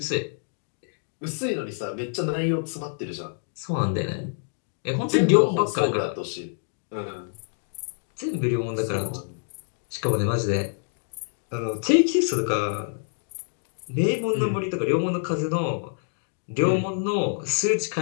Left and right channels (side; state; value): right; silent; digital silence